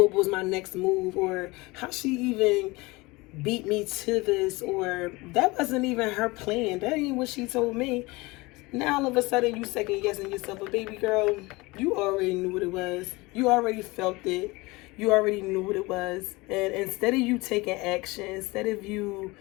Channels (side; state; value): right; quieter; 23.1 dB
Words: was my next move, or how she even beat me to this, or that wasn't even her plan, that ain't what she told me. Now all of a sudden you second guessing yourself. But baby girl, you already knew what it was. You already felt it. You already knew what it was. And instead of you taking action, instead of you